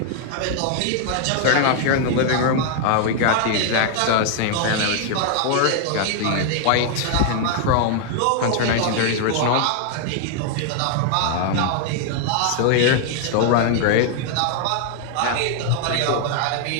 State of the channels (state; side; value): different; both; correlation 0.00